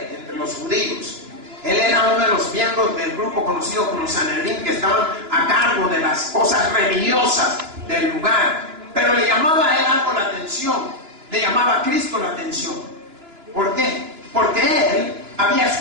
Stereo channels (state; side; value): late; left; 2.9 ms